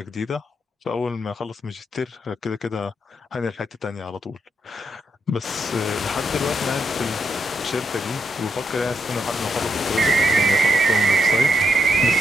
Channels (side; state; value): both; normal; correlation 0.79